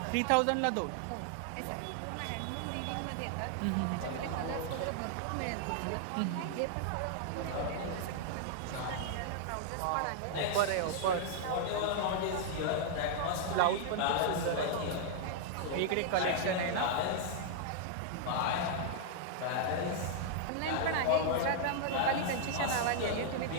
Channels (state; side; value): different; both; correlation -0.01